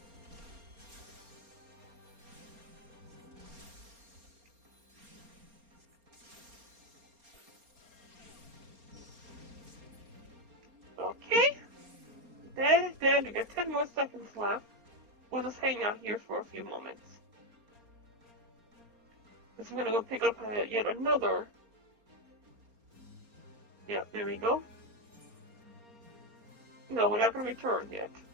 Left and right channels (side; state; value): left; late; 4.3 ms